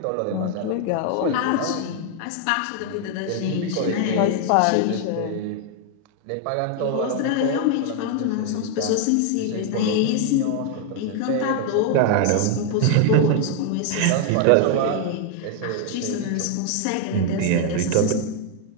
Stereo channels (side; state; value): both; different; correlation 0.00